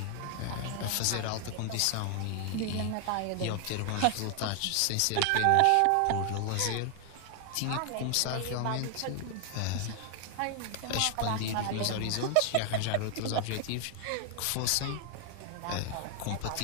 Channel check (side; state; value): both; different; correlation 0.00